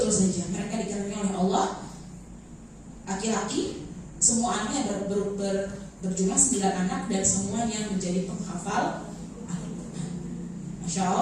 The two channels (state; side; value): identical; both; correlation 1.00